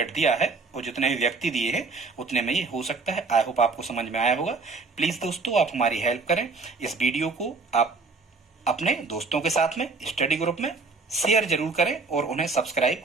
दिया है और जितने भी व्यक्ति दिए हैं उतने में ये हो सकता है। आई होप आपको समझ में आया होगा। प्लीज दोस्तों आप हमारी हेल्प करें, इस वीडियो को आप अपने दोस्तों के साथ में स्टडी ग्रुप में शेयर जरूर करें और उन्हें सब्सक्राइब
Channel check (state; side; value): quieter; left; 4.1 dB